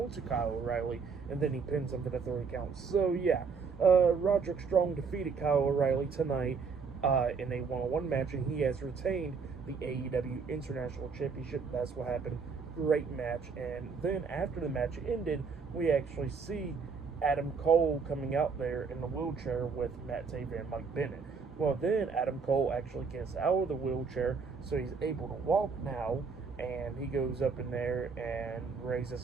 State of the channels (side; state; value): left; quieter; 5.3 dB